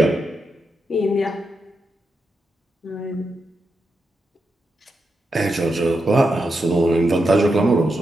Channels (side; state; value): both; normal; correlation 0.86